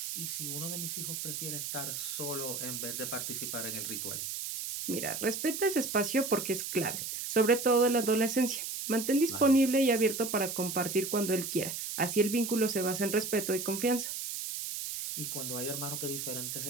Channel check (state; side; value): noise; right; hiss, 5 dB below the sound